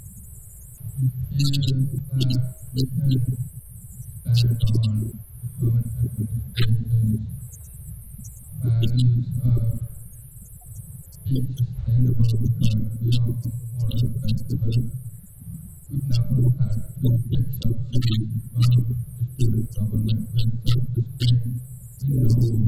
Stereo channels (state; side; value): identical; both; correlation 1.00